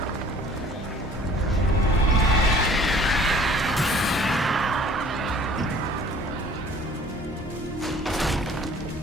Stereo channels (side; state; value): both; normal; correlation 0.52